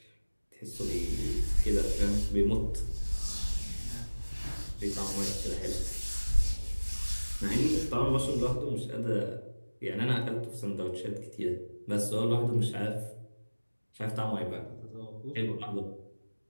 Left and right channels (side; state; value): both; inverted; correlation -1.00